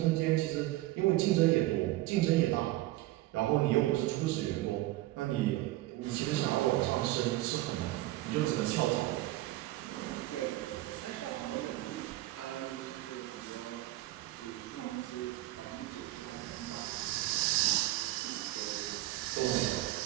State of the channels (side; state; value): left; quieter; 17.1 dB